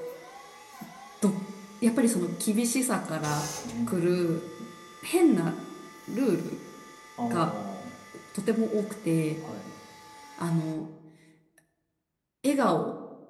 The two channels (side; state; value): both; identical; correlation 1.00